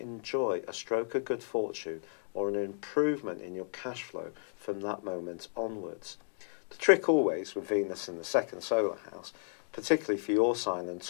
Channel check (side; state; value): right; silent; digital silence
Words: a stroke of good fortune or an improvement in your cash flow from that moment onwards. The trick always with Venus in the 2nd solar house, particularly for your sign and